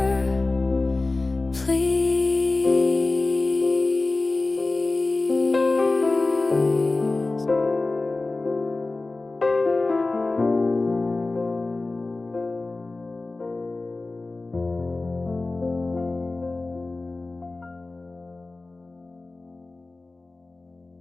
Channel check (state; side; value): quieter; right; 3.3 dB